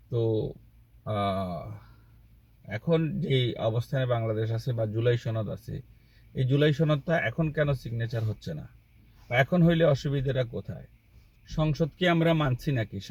তো আহ, এখন যে অবস্থানে বাংলাদেশ আছে বা জুলাই সনদ আছে, এই জুলাই সনদটা এখন কেন সিগনেচার হচ্ছে না, বা এখন হইলে অসুবিধাটা কোথায়? সংসদকে আমরা মানছি নাকি?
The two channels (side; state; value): both; identical; correlation 1.00